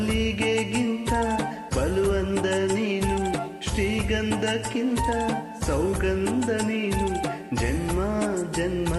ಬಲುವಂದ ನೀನು ಶ್ರೀಗಂಧಕ್ಕಿಂತ ಸೌಗಂಧ ನೀನು ಜನ್ಮ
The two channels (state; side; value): identical; both; correlation 1.00